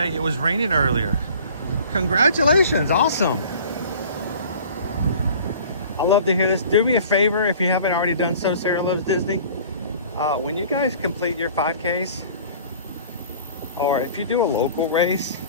it was raining earlier. Congratulations, awesome. I love to hear this. Do me a favor if you haven't already done so, Sarah Loves Disney. When you guys complete your 5Ks, or if you do a local race,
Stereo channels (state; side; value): inverted; both; correlation -0.47